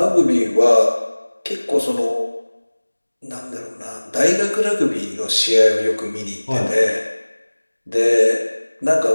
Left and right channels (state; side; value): inverted; both; correlation -1.00